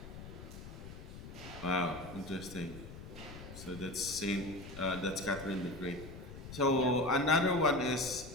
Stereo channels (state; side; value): noise; left; rumble, 13 dB below the sound